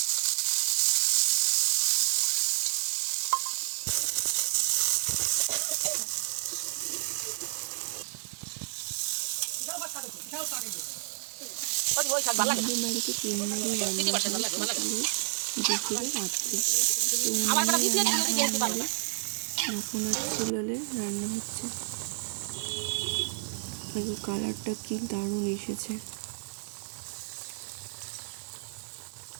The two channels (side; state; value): left; silent; 58 dB below the other